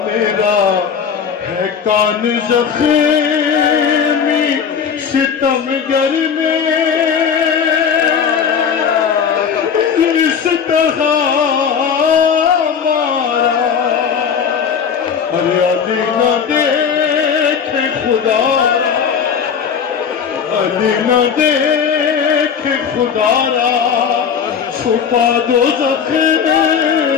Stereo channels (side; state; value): right; quieter; 7.0 dB